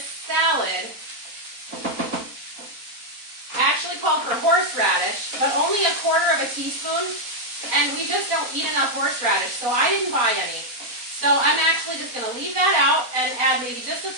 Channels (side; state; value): left; late; 4.0 ms